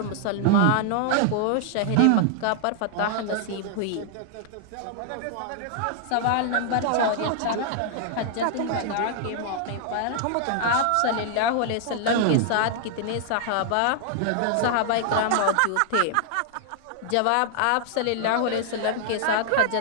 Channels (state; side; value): different; both; correlation -0.01